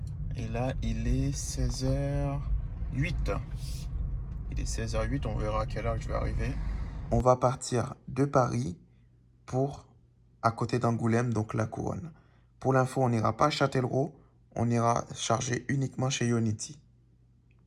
Et là, il est 16h08. Il est 16h08, on verra à quelle heure je vais arriver. On va partir de Paris pour à côté d'Angoulême, donc la Couronne. Pour l'info, on n'ira pas à Châtellerault, on ira charger uniquement chez Ionity.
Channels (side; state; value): both; identical; correlation 1.00